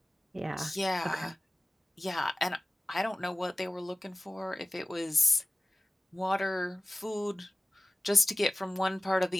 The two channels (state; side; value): normal; both; correlation 0.95